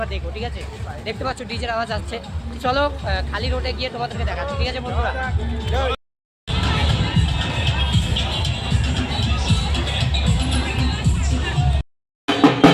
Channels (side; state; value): both; identical; correlation 1.00